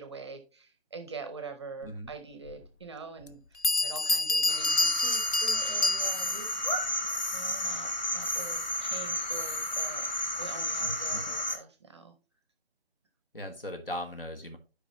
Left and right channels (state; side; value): normal; both; correlation 0.16